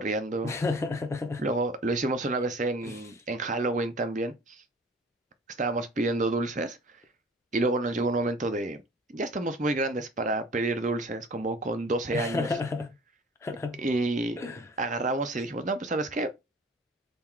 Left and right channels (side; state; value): both; normal; correlation 0.47